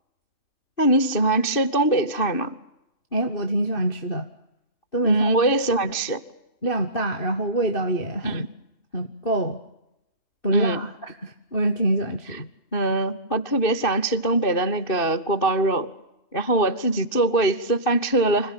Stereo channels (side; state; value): right; late; 2.6 ms